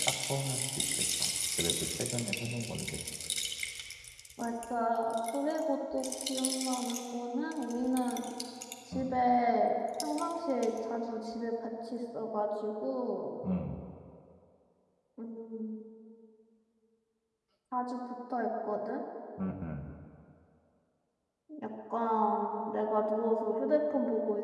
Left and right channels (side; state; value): both; identical; correlation 1.00